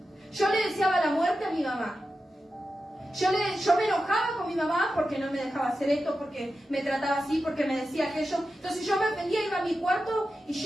Yo le deseaba la muerte a mi mamá. Yo me enojaba con mi mamá porque no me dejaba hacer esto, porque me trataba así, porque me decía aquello. Entonces yo me ofendía, iba a mi cuarto y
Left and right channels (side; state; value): both; normal; correlation 0.91